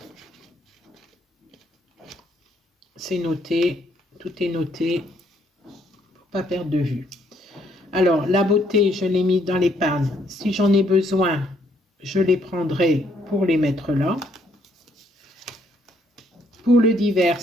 C'est noté, tout est noté pour pas perdre de vue. Alors, la beauté, je l'ai mis dans l'épargne. Si j'en ai besoin, je les prendrai pour les mettre là. Pour le divers,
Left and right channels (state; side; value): normal; both; correlation 0.69